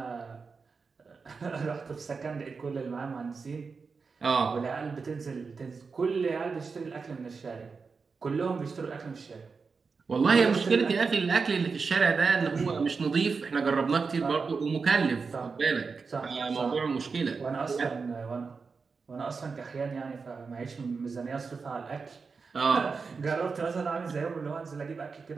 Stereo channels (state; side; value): quieter; left; 4.9 dB